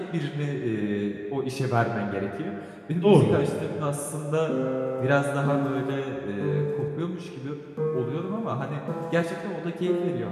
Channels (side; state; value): both; identical; correlation 1.00